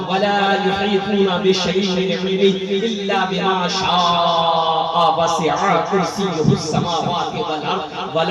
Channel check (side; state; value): both; identical; correlation 1.00